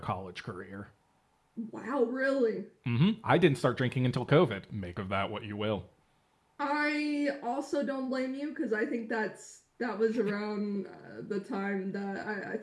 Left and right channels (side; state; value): both; identical; correlation 1.00